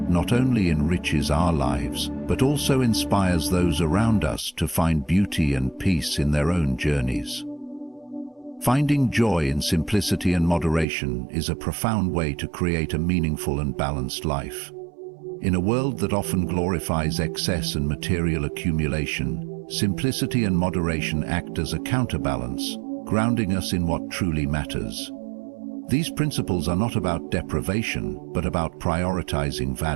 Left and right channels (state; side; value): drops out; left; at 10.9 s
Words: not only enriches our lives, but also inspires those around us to find beauty and peace in their own journeys. Finding joy in simplicity and moderation is a profound way to create a meaningful and balanced life. In a world that often glorifies excess and material accumulation, simplicity and moderation act as a counterbalance, grounding us in what truly matters. These principles are not about deprivation, but about prioritizing